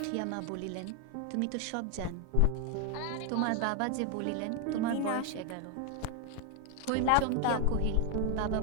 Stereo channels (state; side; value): different; both; correlation 0.01